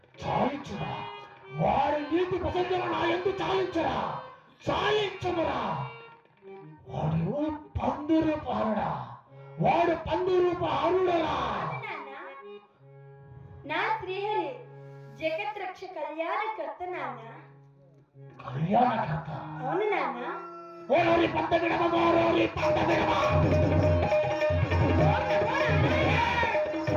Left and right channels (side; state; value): both; identical; correlation 1.00